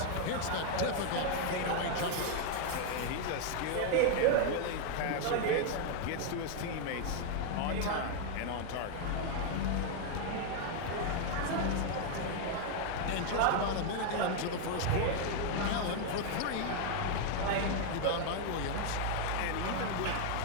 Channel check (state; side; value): different; both; correlation 0.00